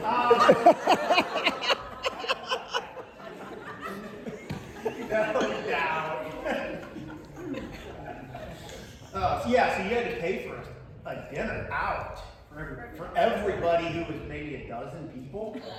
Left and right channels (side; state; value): both; identical; correlation 1.00